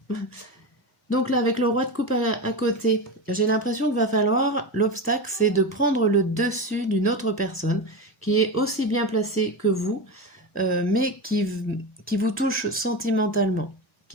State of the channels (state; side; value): normal; both; correlation 0.20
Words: Donc là, avec le roi de coupe à côté, j'ai l'impression qu'il va falloir, l'obstacle, c'est de prendre le dessus d'une autre personne qui est aussi bien placée que vous, mais qui vous touche sentimentalement,